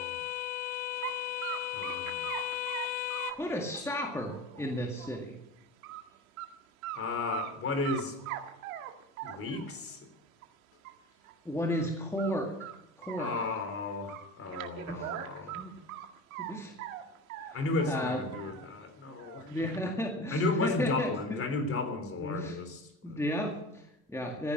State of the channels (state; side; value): normal; both; correlation 0.32